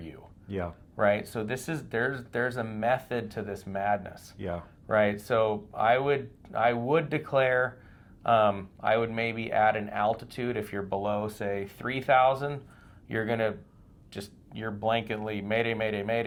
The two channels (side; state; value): both; identical; correlation 1.00